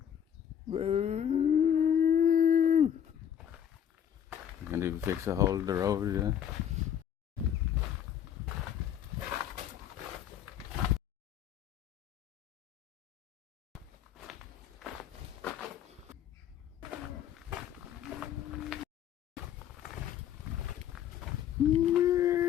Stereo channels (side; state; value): right; quieter; 9.5 dB